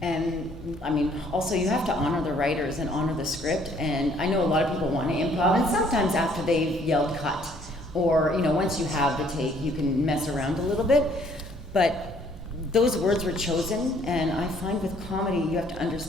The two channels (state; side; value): normal; both; correlation 0.62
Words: I mean, also you have to honor the writers and honor the script. And I know a lot of people want to improv, and sometimes after they've yelled cut, or, you know, once you have the take, you can mess around a little bit. But those words were chosen, and I find with comedy, you have to